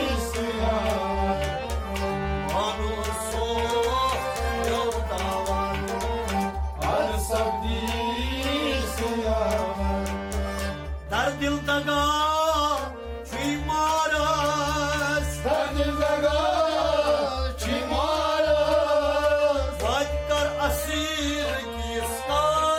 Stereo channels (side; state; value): both; identical; correlation 1.00